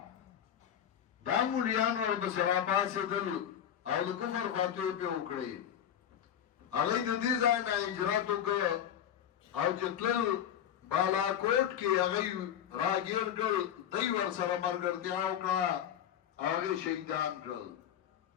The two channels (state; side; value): quieter; right; 9.8 dB